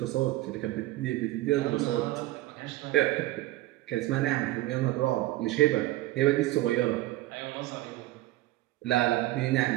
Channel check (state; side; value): quieter; left; 17.0 dB